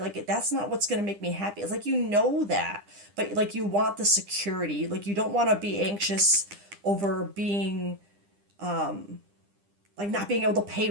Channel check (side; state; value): left; late; 9.9 ms